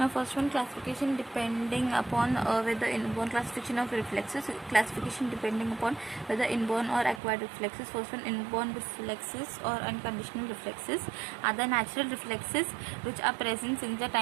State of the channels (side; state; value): left; drops out; at 7.2 s